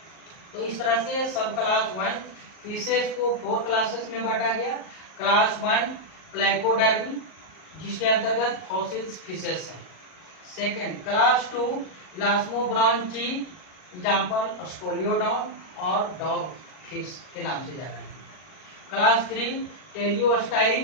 तो इस तरह से सब क्लास 1 फिशेस को 4 क्लासेस में बांटा गया। क्लास 1 प्लैकोडर्मी, जिसके अंतर्गत फॉसिल्स फिशेस हैं। Second class 2 elasmobranchii, example scoliodon और डॉग फिश के नाम से जाना है। Class 3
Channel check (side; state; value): right; late; 38 ms